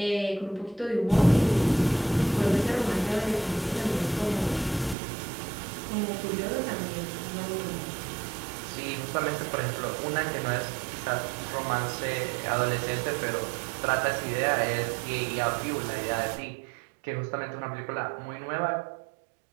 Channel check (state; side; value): drops out; left; at 5.0 s